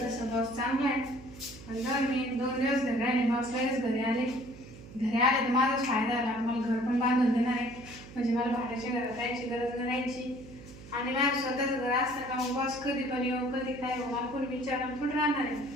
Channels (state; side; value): noise; right; hum, 17 dB below the sound